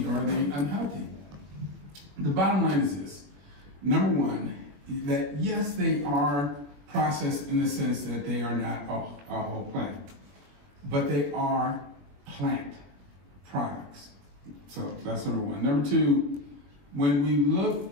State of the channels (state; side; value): late; left; 21 ms